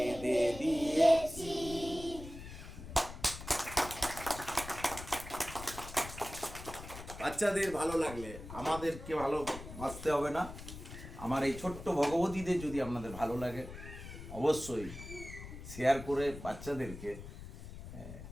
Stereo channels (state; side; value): noise; left; rumble, 12 dB below the sound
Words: দিয়েছি। বাচ্চাদের ভালো লাগলে আমাদেরকে ভালোবাসতে হবে না। আমার এই ছোট্ট ভগবতীদের যদি আপনাদের ভালো লাগে, অবশ্যই শেয়ার করে বাচ্চাদেরকে